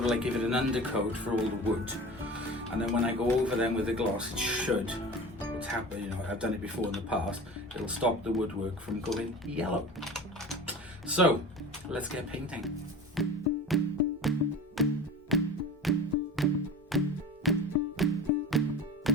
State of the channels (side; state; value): both; normal; correlation 0.35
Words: of like give it an undercoat for all the wood, and then when I go over them with the gloss, it should, it's happened, you know, I've done it before in the past, it'll stop the woodwork from going yellow. So let's get painting.